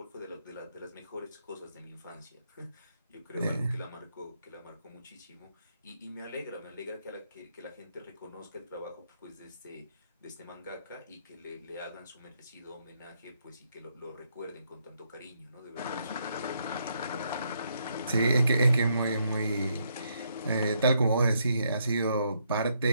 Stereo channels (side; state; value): both; inverted; correlation -0.75